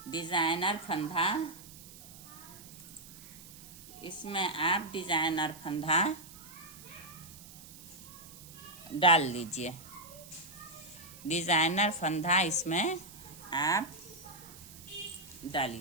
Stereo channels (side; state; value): right; noise; hiss, 17 dB below the sound